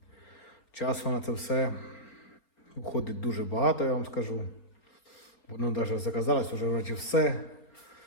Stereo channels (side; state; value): right; late; 4.1 ms